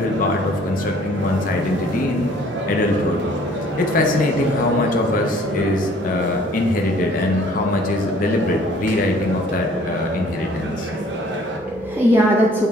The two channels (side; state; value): both; normal; correlation 0.56